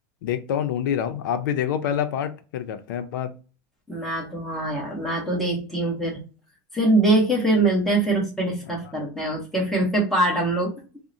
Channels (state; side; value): normal; both; correlation 0.31